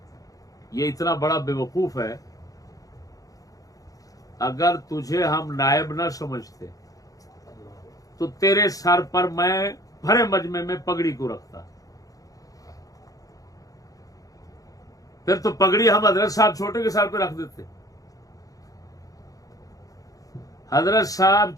ये इतना बड़ा बेवकूफ है, अगर तुझे हम नायब ना समझते तो तेरे सर पर मैं भरे मजमे में पगड़ी को रखता। फिर तो पगड़ी हम हजरत साहब छोटे के सर पे रख देते। हजरत साहब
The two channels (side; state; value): right; late; 0.17 ms